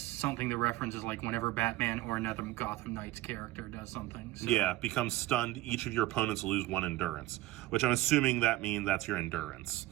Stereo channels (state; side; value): quieter; left; 17.0 dB